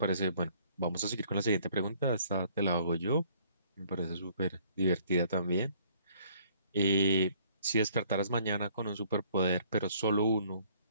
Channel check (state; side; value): inverted; both; correlation -0.61